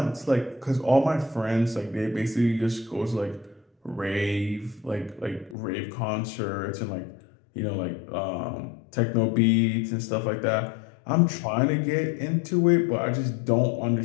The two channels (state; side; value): drops out; right; at 5.6 s